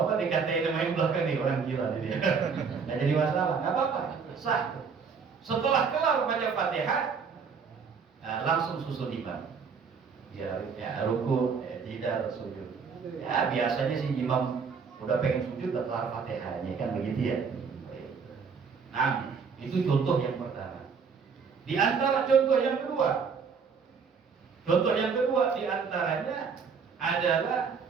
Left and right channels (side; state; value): left; quieter; 5.8 dB